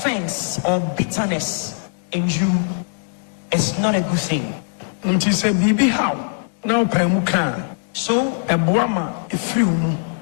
or bitterness in you, it's not a good thing. So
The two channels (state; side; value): silent; right; digital silence